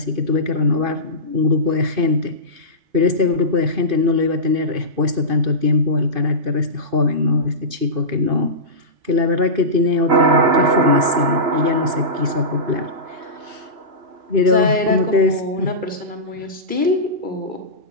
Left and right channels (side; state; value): left; late; 2.5 ms